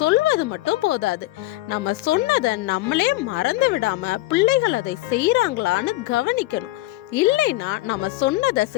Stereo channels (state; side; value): quieter; right; 17.9 dB